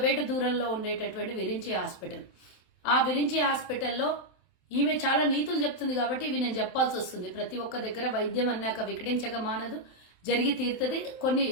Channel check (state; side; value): late; right; 27 ms